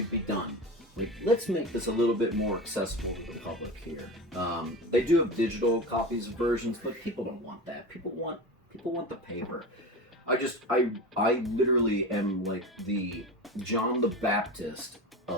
be done. Let's make this a little bit more accessible to the public here. They do have digital copies of versions, but people don't want that. People want the paper. I literally am like the John the Baptist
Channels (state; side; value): normal; both; correlation 0.28